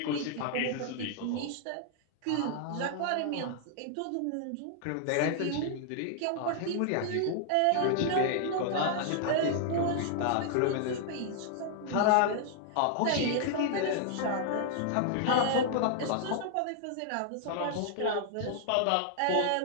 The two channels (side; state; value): both; different; correlation 0.00